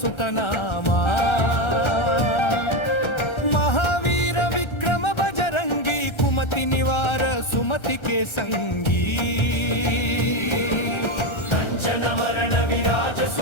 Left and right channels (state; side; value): late; right; 1.3 ms